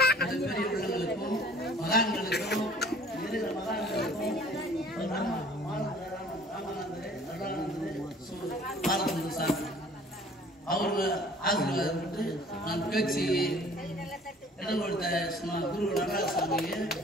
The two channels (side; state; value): both; normal; correlation 0.52